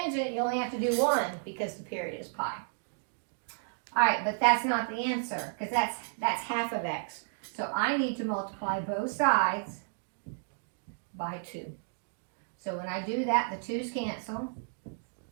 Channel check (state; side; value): silent; left; digital silence